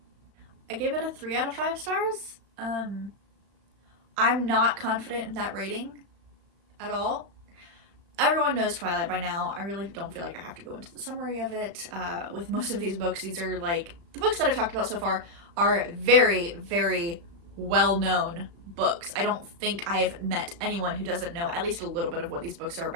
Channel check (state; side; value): late; left; 35 ms